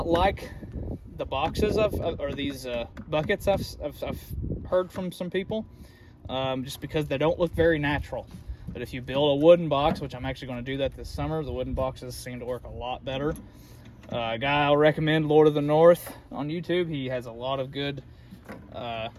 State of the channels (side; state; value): both; identical; correlation 1.00